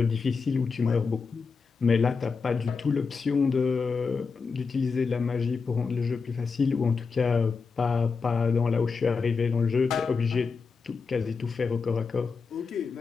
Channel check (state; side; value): quieter; right; 5.0 dB